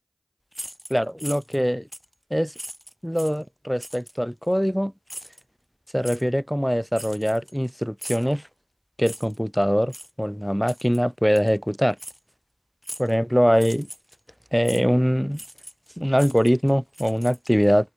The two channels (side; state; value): both; identical; correlation 1.00